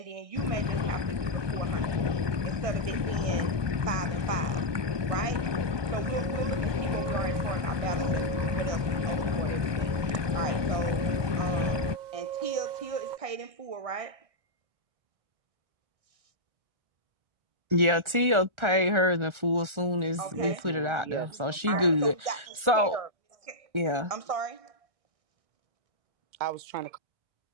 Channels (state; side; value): late; left; 1.4 ms